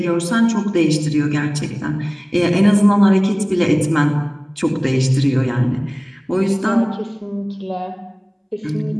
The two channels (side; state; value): both; identical; correlation 1.00